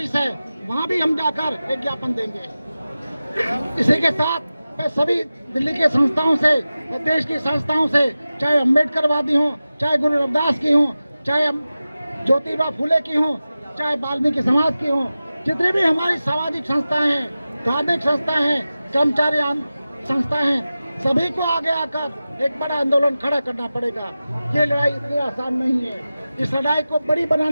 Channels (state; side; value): inverted; both; correlation -0.95